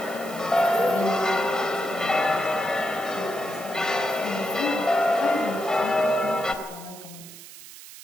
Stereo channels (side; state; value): right; noise; hiss, 16 dB below the sound